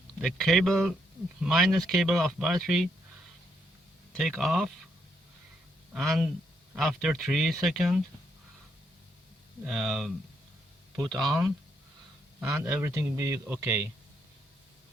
the cable minus cable of battery take off, and after 3 seconds put on, and everything will be okay.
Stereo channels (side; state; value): both; normal; correlation 0.76